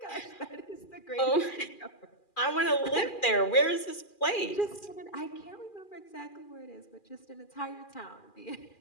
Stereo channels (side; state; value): right; late; 2.4 ms